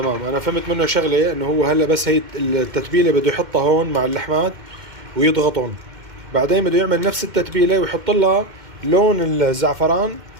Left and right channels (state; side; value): late; left; 2.2 ms